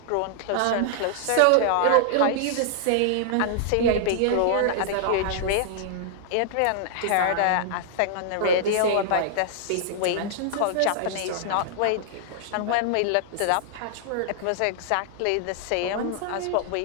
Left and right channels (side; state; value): both; different; correlation -0.01